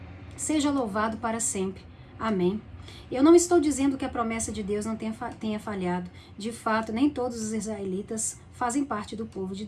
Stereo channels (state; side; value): identical; both; correlation 1.00